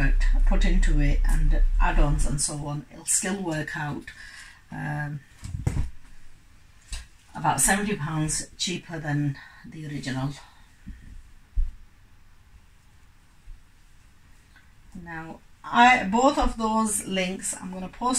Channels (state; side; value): identical; both; correlation 1.00